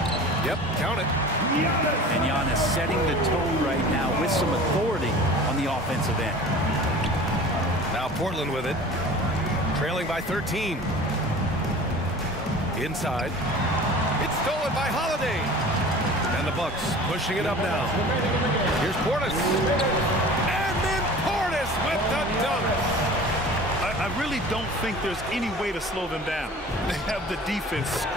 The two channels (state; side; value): normal; both; correlation 0.41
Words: Yep, count it. And Giannis setting the tone right now with some authority on the offensive end. Now Portland with it. Trailing by 13. Inside. It's stolen by Holiday. And the Bucks pushing it up now. Here's Portis. And then Portis with the dunk. I really don't think there's any way to slow them down. They have the defense